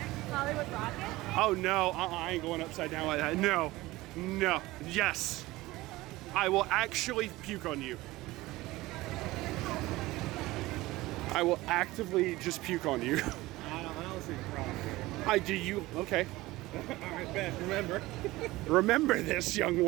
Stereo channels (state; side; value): quieter; left; 19.0 dB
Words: Hollywood Rocket? Oh no, I ain't going upside down like that. No, no, yes. I will actually puke on you. I will actively just puke on you. I don't see the problem. I do you. Okay. All right, Ben, remember. Remember this, young